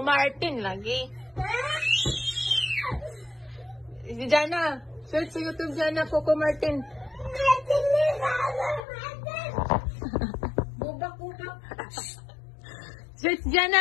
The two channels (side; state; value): right; drops out; at 8.8 s